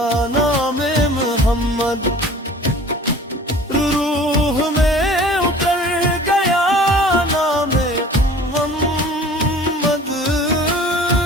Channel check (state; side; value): normal; both; correlation 0.45